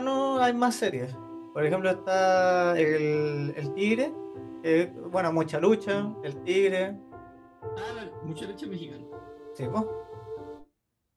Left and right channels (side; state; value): both; identical; correlation 1.00